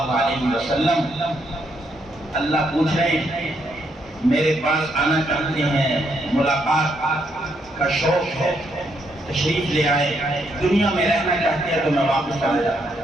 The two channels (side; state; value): both; normal; correlation 0.76